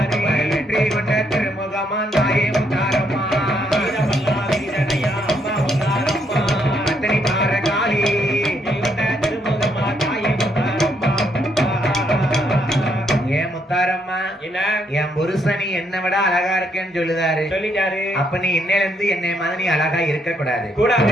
வெற்றி கொண்ட திருமுகமா தாயே முத்தாரம்மா, வீர பல்லாவரி சடையா அம்மா முத்தாரம்மா, அத்தனை பார காளி கொண்ட திருமுகமா தாயே முத்தாரம்மா. ஏன் முத்தாரம்மா, என்ன? என் புருஷனி என்ன விட அழகா இருக்கேன்னு சொல்லுதாரு. சொல்லிட்டாரு. அப்ப நீ இன்னையில இருந்து என்னை மாதிரி நீ அழகா இருக்க கூடாது.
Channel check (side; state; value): both; normal; correlation 0.74